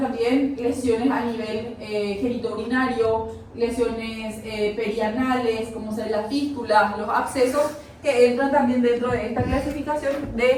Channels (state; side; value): identical; both; correlation 1.00